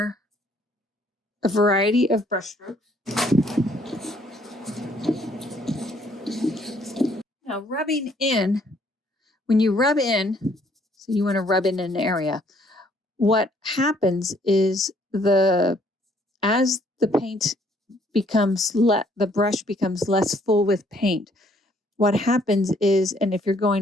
a variety of brush strokes. Now rubbing in, when you rub in, so you want to rub in an area, what happens is as the paint becomes the brush becomes less full with paint, what happens is, and if you're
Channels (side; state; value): both; normal; correlation 0.64